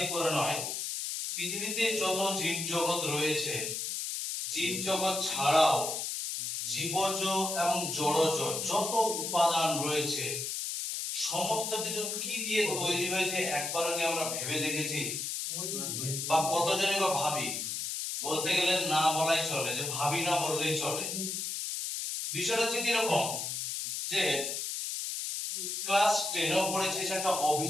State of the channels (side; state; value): left; noise; hiss, 3 dB below the sound